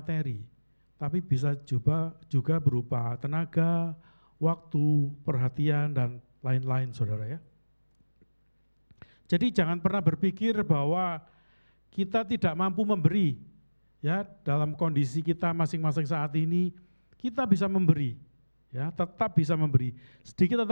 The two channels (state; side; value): inverted; both; correlation -1.00